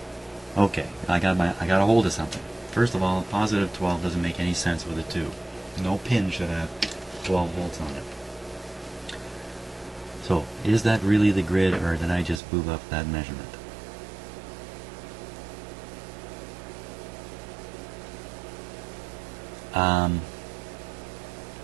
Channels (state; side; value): drops out; left; at 12.4 s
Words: Okay, I got a hold of something. First of all, positive 12 doesn't make any sense with a 2. No pin should have 12 volts on it. So, is that really the grid, or did I just boob up that measurement?